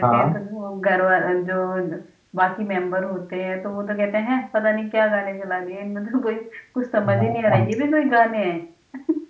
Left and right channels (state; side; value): identical; both; correlation 1.00